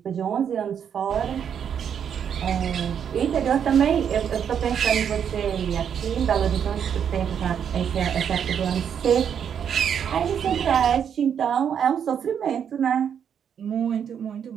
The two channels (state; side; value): quieter; left; 8.1 dB